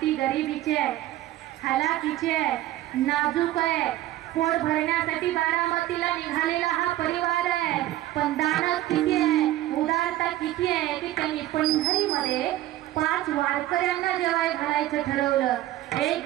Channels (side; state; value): left; quieter; 14.7 dB